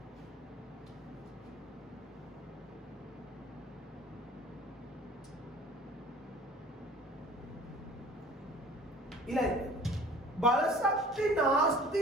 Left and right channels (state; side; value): normal; both; correlation 0.48